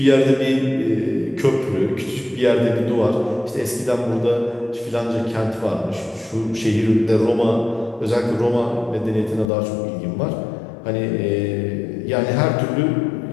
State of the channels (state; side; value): drops out; right; at 9.5 s